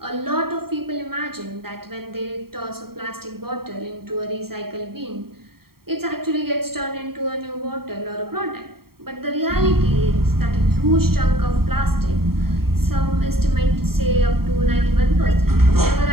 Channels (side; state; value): left; late; 0.94 ms